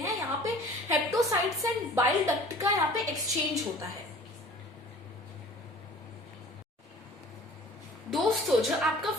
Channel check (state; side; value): normal; both; correlation 0.47